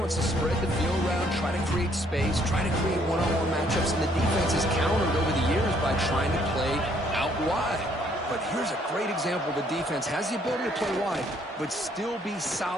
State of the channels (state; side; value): normal; both; correlation 0.66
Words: to spread the field around, try to create space, try to create one-on-one matchups, and the defense has countered over the years by trying to play out wide. But here's a great example. The defense has the ability to play wide, but still be